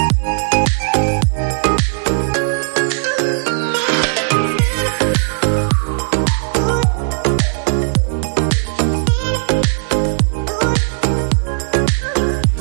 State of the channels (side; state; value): left; silent; digital silence